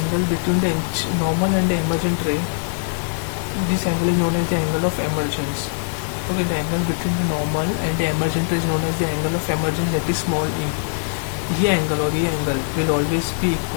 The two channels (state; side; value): silent; right; digital silence